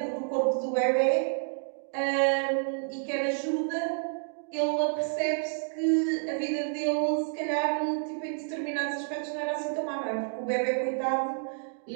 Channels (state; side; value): silent; left; digital silence